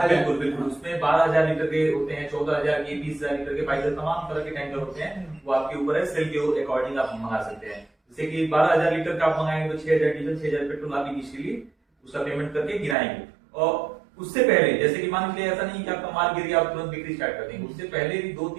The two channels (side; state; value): left; drops out; at 13.0 s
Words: बिल्कुल बिल्कुल। उसमें 12,000 लीटर के होते हैं, 14,000 के, 20,000 लीटर के, 22,000 तमाम तरह के टैंकर होते हैं। वो आपके ऊपर है, सेल के अकॉर्डिंग आप मंगा सकते हैं। जैसे कि 12,000 लीटर का आप मंगाएंगे तो 6,000 डीजल, 6,000 पेट्रोल आप इनिशियली उसका पेमेंट करके गिराएंगे। और उससे पहले जैसे कि मान लीजिए ऐसा नहीं कि आपका माल गिर गया आप तुरंत बिक्री स्टार्ट कर देंगे। उससे पहले भी